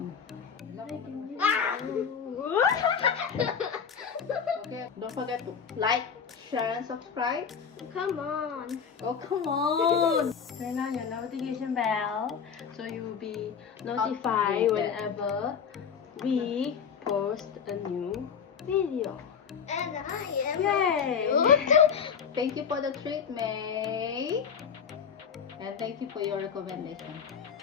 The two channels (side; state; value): right; quieter; 6.8 dB